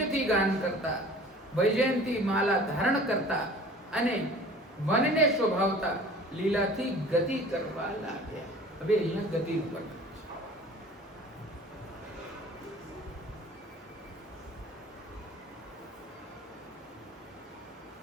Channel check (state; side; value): normal; both; correlation 0.45